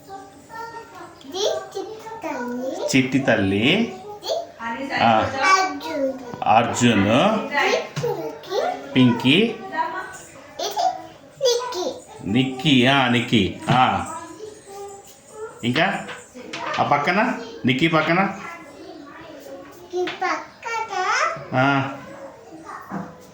చిట్టి తల్లి. అర్జున్. పింకీ. నిక్కీ. నిక్కీ. ఇంకా ఆ పక్కన నిక్కీ పక్కన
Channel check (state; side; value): identical; both; correlation 1.00